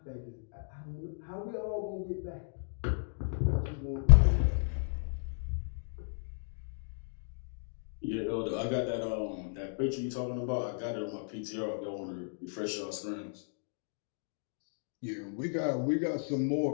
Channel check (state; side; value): silent; right; digital silence